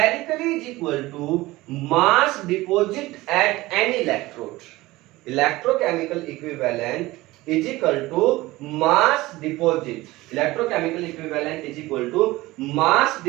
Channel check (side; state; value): left; quieter; 19.2 dB